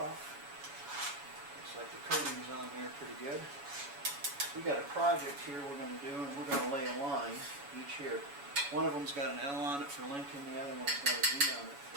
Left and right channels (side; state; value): left; late; 7.1 ms